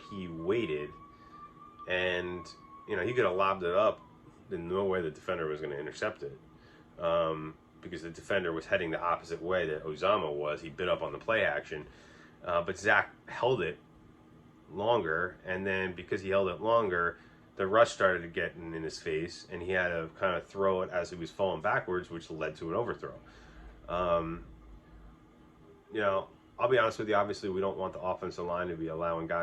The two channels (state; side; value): identical; both; correlation 1.00